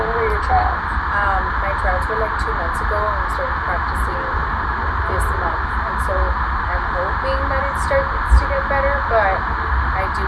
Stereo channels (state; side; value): identical; both; correlation 1.00